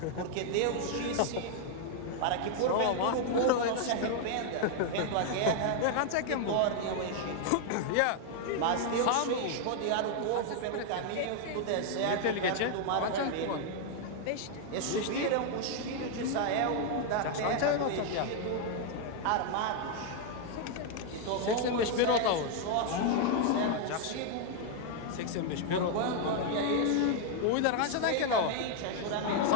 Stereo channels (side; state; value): both; different; correlation 0.00